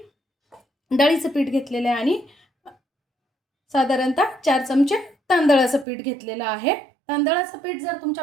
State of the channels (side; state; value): left; drops out; at 5.9 s